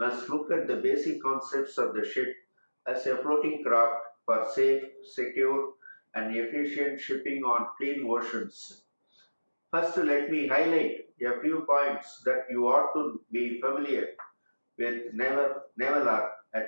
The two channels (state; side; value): inverted; both; correlation -1.00